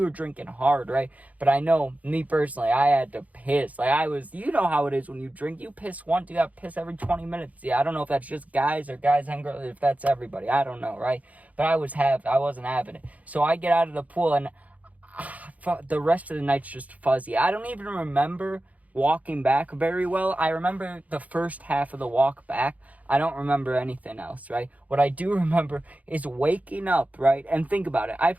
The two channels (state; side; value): late; left; 0.072 ms